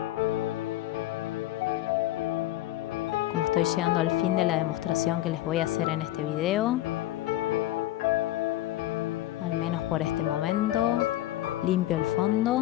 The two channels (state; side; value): quieter; right; 14.9 dB